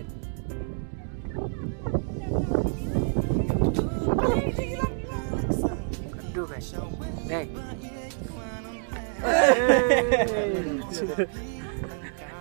Aduh guys. Nih.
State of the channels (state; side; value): silent; left; 60 dB below the other